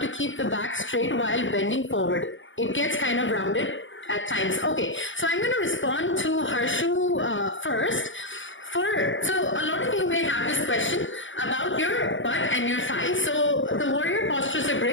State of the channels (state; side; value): late; right; 0.56 ms